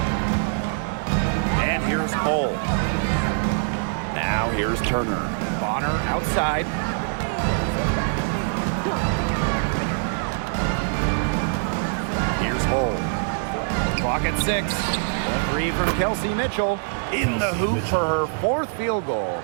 And here's Cole. Now here's Turner. Bonner outside. Here's Cole. Clock at 6. A three from Kelsey Mitchell. In the hoop for her 4th field goal.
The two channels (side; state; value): left; silent; 63 dB below the other